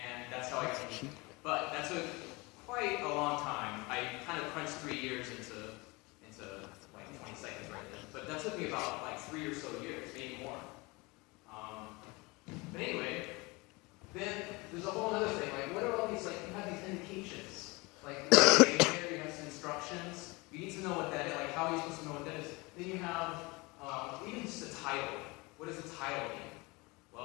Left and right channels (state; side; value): quieter; right; 25.2 dB